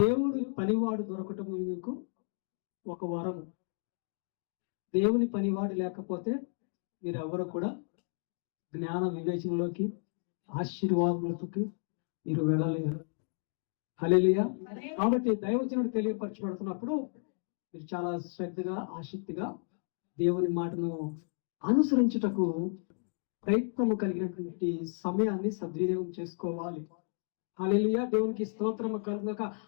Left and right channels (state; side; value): silent; right; 56 dB below the other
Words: పనివాడు దొరకటము నీకు ఒక వరము. దేవుని పనివాడు లేకపోతే మీరెవరు కూడా జ్ఞాన వివేచనలోకి, ఆశీర్వాదాలకి మీరు వెళ్ళలేరు. హల్లెలూయా. కాబట్టి దైవజనుడు తెలియపరచబడుతున్నప్పుడు మీరు చాలా శ్రద్ధగా, ఆసక్తిగా దేవుని మాటను అనుసరించుటకు ప్రయత్నము కలిగినటువంటి సమయాన్ని సద్వినియోగం చేసుకోవాలి. హల్లెలూయా, దేవునికి స్తోత్రము కలుగుగాక.